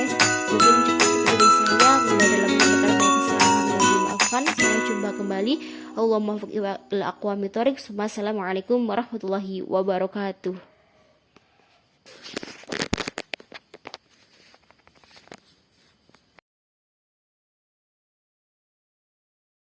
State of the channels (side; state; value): both; identical; correlation 1.00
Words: mungkin cukup itu dari saya. Bila dalam menyampaikan banyak kesalahan yang dimaafkan. Sampai jumpa kembali. Allahumma muwaffiq ila aqwamit thoriq. Wassalamualaikum warahmatullahi wabarakatuh.